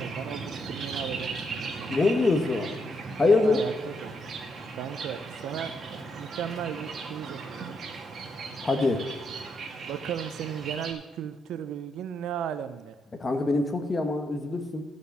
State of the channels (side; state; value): both; normal; correlation 0.78